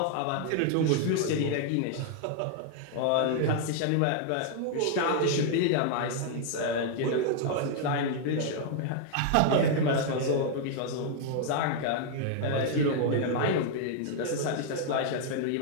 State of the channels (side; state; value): both; different; correlation 0.00